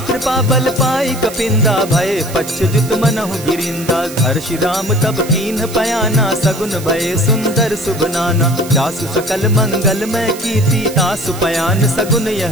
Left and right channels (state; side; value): noise; right; hiss, 14 dB below the sound